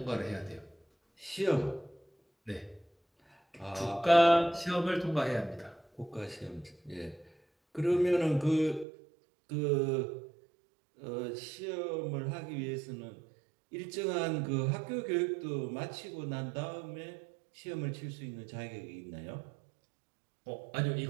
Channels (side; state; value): left; drops out; at 8.8 s